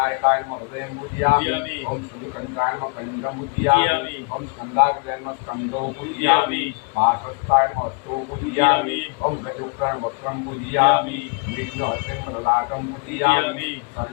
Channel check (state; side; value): quieter; right; 32.6 dB